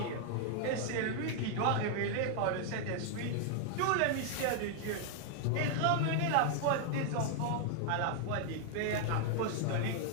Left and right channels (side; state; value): both; different; correlation 0.00